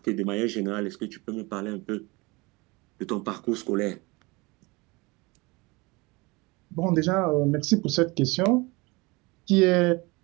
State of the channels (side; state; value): left; quieter; 25.0 dB